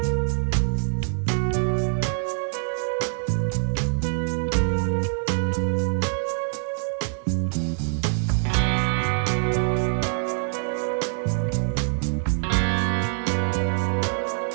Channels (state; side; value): silent; left; digital silence